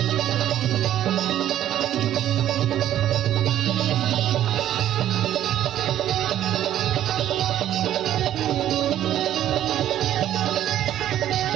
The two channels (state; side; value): quieter; left; 11.9 dB